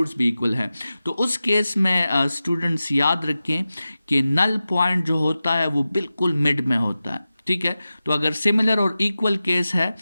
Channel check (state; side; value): inverted; both; correlation -0.94